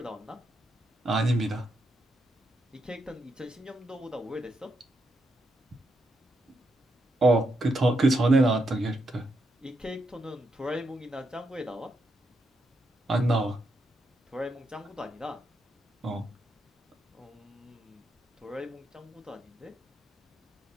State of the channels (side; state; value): both; normal; correlation 0.81